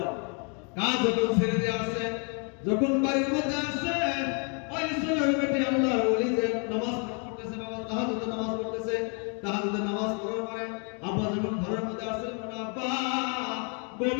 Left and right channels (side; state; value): right; quieter; 38.2 dB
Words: কাজ যখন ছেড়ে দিয়ে আসছে, যখন বাড়ির মধ্যে আসছে, ওই চোরের বেটি আল্লাহর ওলি যে নামাজ পড়তেছে, বাবা তাহাজ্জুদের নামাজ পড়তেছে, তাহাজ্জুদের নামাজ পড়ার পরে আব্বা যখন ঘরের মধ্যে আসছেন, বলে আব্বা